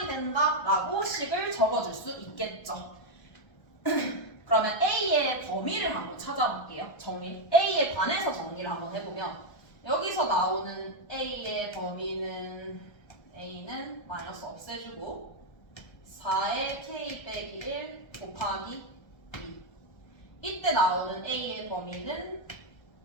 된다라고 식을 적어줄 수 있겠죠. 그러면 A의 범위를 한번 찾아볼게요. 정리. A에 관해서 정리를 한번 해보면 여기서 나오는 A의 범위는 A는 마이너스 없애주고 4의 K 빼기 1 곱하기 2. 이때 나오는 A의 범위는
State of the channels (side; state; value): right; late; 1.2 ms